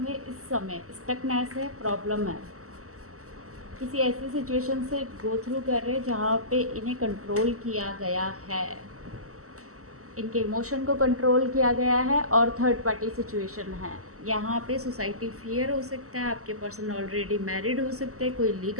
इस समय स्टकनेस है, प्रॉब्लम है, किसी ऐसी सिचुएशन से गो थ्रू कर रहे हैं जहाँ पे इन्हें कंट्रोल किया गया है, इनके इमोशन को कंट्रोल किया गया है और थर्ड पार्टी सिचुएशन है। यहाँ पे सोसाइटी फियर हो सकता है, आपके पर्सन ऑलरेडी मैरिड हो सकते हैं, कोई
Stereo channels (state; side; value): late; left; 0.64 ms